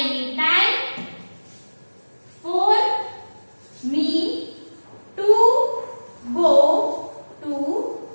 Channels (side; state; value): both; inverted; correlation -1.00